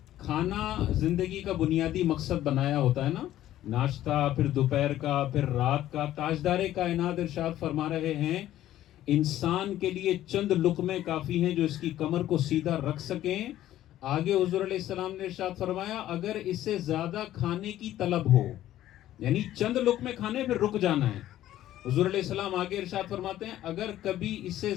کھانا زندگی کا بنیادی مقصد بنایا ہوتا ہے نا، ناشتہ، پھر دوپہر کا، پھر رات کا. تاجدار کائنات ارشاد فرما رہے ہیں، انسان کے لیے چند لقمے کافی ہیں جو اس کی کمر کو سیدھا رکھ سکیں. آگے حضور علیہ السلام نے ارشاد فرمایا، اگر اس سے زیادہ کھانے کی طلب ہو، یعنی چند لقمے کھانے پھر رک جانا ہے. حضور علیہ السلام آگے ارشاد فرماتے ہیں، اگر کبھی اس سے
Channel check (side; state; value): right; quieter; 13.3 dB